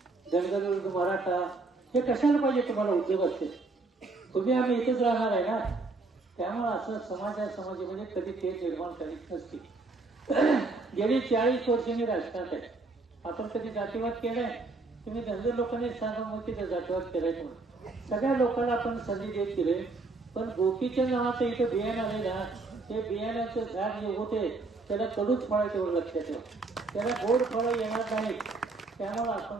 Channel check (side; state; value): left; quieter; 3.5 dB